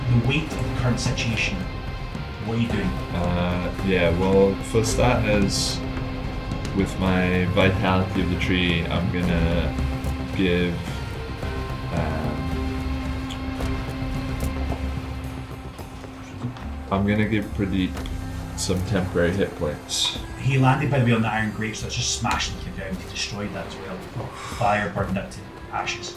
weight of the current situation. What are you doing? Yeah, well, for starters, with my vitality of the tree, I'm gonna give. I'm gonna give Pradeep some temporary hit points. He landed, by the way, on the iron grate, so it's just smashed into the ground. He destroyed that as well. Fire burned it to ashes.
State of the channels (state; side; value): identical; both; correlation 1.00